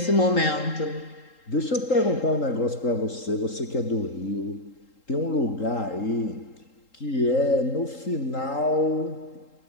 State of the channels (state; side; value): late; right; 3.8 ms